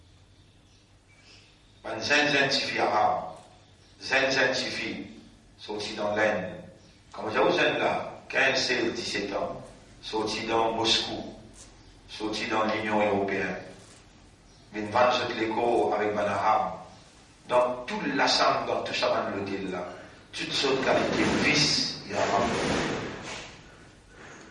Un zen suffit arabe. Zen suffit. Sorti dans l'Inde. Comme j'ai aux zen là, 15, 16, 17 ans. Sorti dans Moscou. Sorti dans l'Union européenne. Mais une vente de l'écho avec un arabe. Dans tout l'assemble, dans tout ça, dans l'hôtel là. Toutes sortes de qualités, vice, il y a arabe.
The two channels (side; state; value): both; identical; correlation 1.00